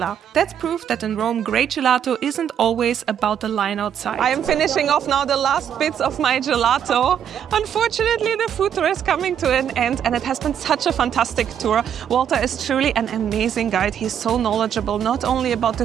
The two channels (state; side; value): quieter; left; 9.0 dB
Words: That's proof that in Rome, great gelato isn't always about the line outside. I am finishing off now the last bits of my gelato. Unfortunately, the food tour is coming to an end, and it has been such a fantastic tour. Walter is truly an amazing guide. He's so knowledgeable, not only about the